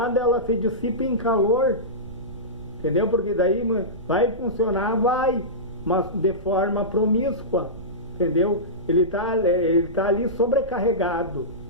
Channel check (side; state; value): right; noise; rumble, 17 dB below the sound